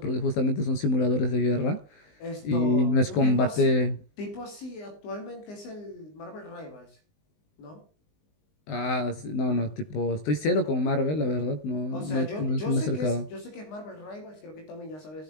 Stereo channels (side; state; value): right; late; 19 ms